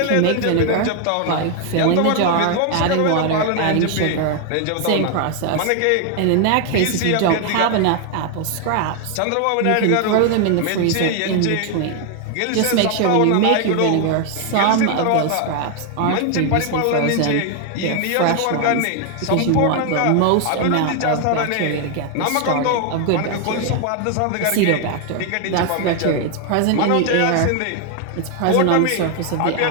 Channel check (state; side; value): different; both; correlation 0.00